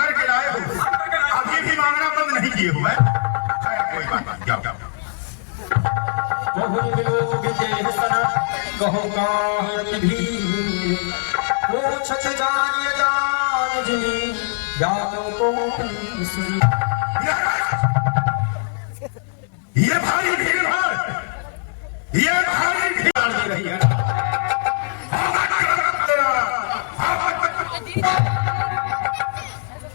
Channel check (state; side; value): silent; right; digital silence